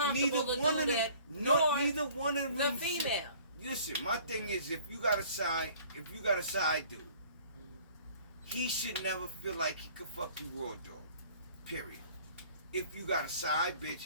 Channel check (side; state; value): both; inverted; correlation -0.52